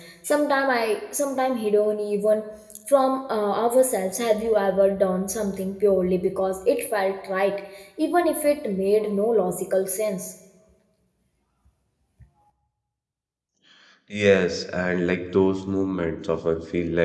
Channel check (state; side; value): identical; both; correlation 1.00